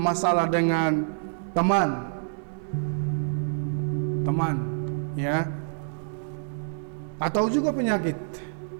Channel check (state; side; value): silent; left; digital silence